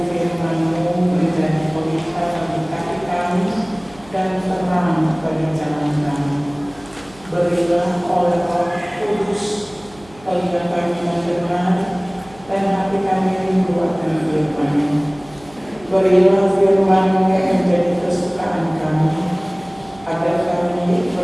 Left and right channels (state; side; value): noise; right; hum, 24 dB below the sound